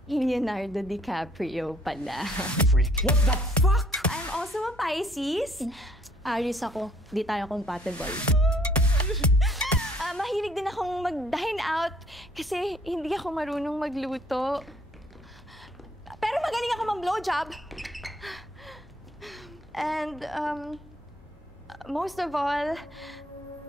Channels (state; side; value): normal; both; correlation 0.63